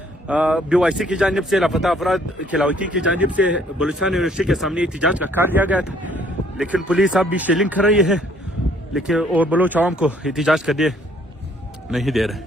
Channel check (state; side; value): normal; both; correlation 0.62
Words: BYC की जानिब से लापता अफराद खिलावती की जानिब से बलूचिस्तान यूनिवर्सिटी के सामने एहतजाज का कार्य लिया गया था, लेकिन पुलिस अब भी शेलिंग कर रही है लेकिन और बलोच अवाम को एहतजाज करने नहीं दे